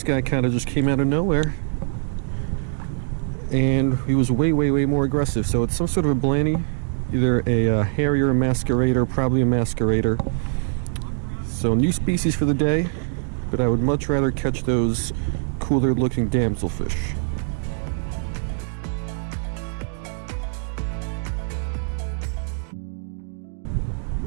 guy kind of just came out of nowhere. And he was way, way, way more aggressive. So it's some sort of a blanny. Either a harrier masquerader, probably a masquerader. So new species for the day, but I would much rather catch those cooler looking damselfish.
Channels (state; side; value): silent; left; digital silence